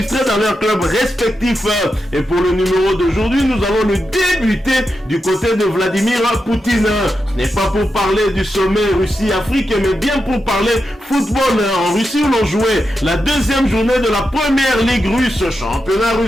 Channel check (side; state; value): both; normal; correlation 0.88